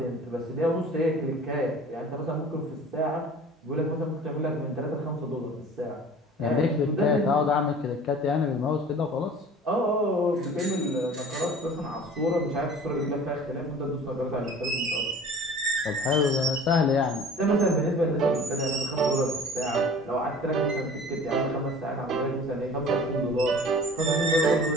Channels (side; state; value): both; normal; correlation 0.44